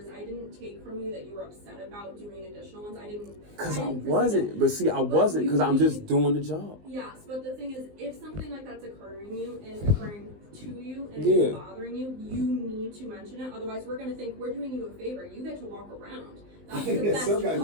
I didn't take from you that you were upset about doing additional ones. I didn't. Because I wasn't. But see, I wasn't because I'm just doing the job. Yes, but the thing is, if something like that's occurring to you and it's bothering you, you need to mention it. Otherwise, we're going to think we're doing you a favor. You get to walk around. That's the best some guys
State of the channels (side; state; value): left; late; 19 ms